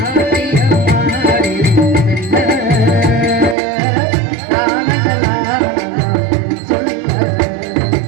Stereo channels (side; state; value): left; drops out; at 3.6 s